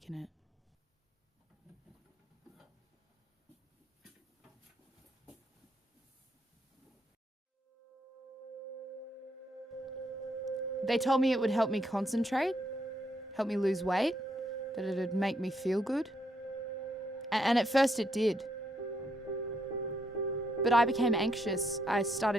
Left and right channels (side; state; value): both; normal; correlation 0.75